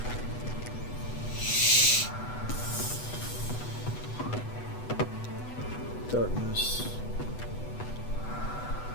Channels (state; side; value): late; right; 8.1 ms